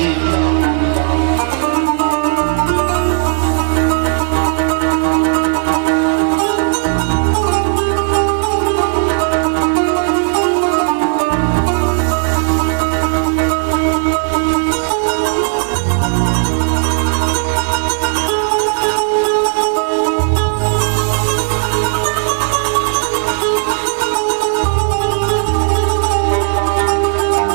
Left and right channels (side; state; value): left; silent; 56 dB below the other